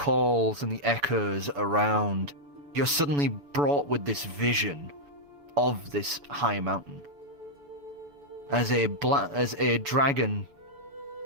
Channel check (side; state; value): left; late; 7.0 ms